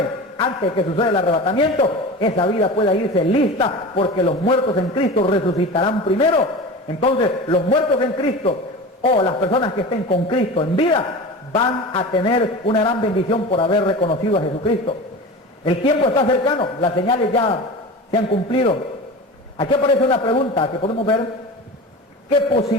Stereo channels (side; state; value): both; normal; correlation 0.32